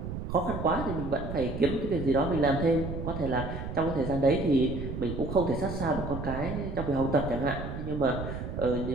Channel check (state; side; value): noise; right; rumble, 6 dB below the sound